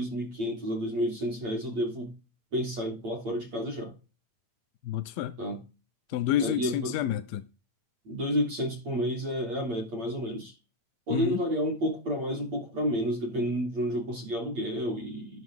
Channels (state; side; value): late; left; 8.7 ms